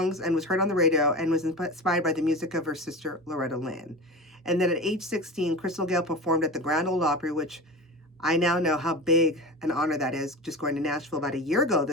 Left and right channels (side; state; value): both; normal; correlation 0.29